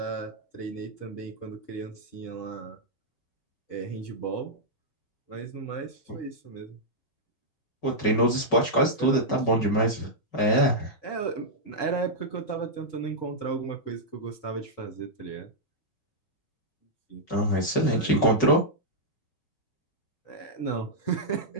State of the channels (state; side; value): late; right; 5.3 ms